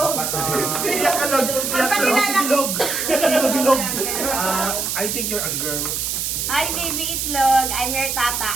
Bilog. I think you're a girl. Hi, baby Itlog. I'm your tata.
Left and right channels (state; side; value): noise; right; hiss, 1 dB below the sound